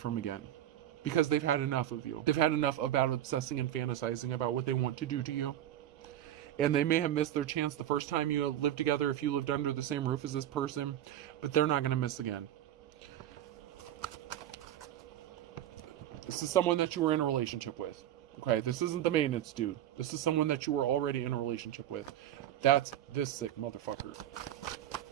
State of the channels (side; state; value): left; quieter; 11.8 dB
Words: again. Because they've had enough of you. They've had enough about obsessing and fantasizing about what they want to do to you. And they may have missed their chance the first time you lived together, if you lived under the same roof as this person, but they're not going to miss again. This is someone that you were in a relationship with. Okay, this isn't the maintenance dude. This is someone that you were already in a relationship with. That's this sick motherfucker.